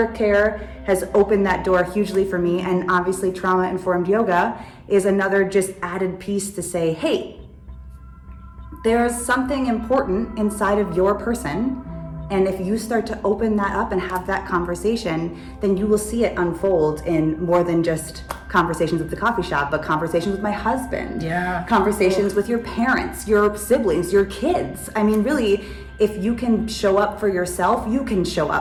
care has opened that door hugely for me. And obviously trauma-informed yoga is another just added piece to say, hey, there's something important inside of your person. And if you start to open that up and have that conversation, then you will see it unfold in more than just conversations at the coffee shop, but conversations with my husband, conversations with your parents, your siblings, your kids. I mean, really, if you can show up for yourself, you can show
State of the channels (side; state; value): both; identical; correlation 1.00